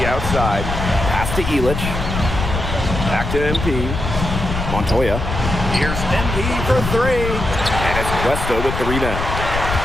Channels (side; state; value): left; noise; rumble, 4 dB below the sound